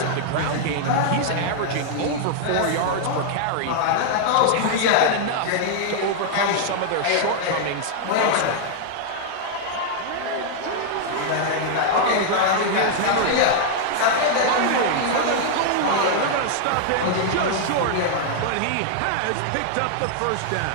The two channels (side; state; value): both; different; correlation -0.01